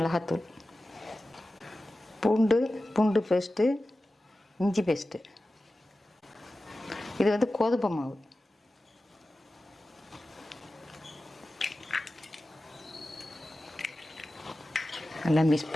பூண்டு பேஸ்ட்டு, இஞ்சி பேஸ்ட்டு, இது வந்து கோதுமை மாவு, எல்லாம் மிக்ஸ்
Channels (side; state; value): both; normal; correlation 0.95